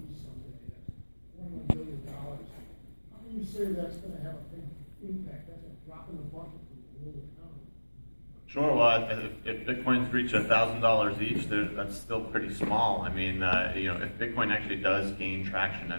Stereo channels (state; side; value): inverted; both; correlation -1.00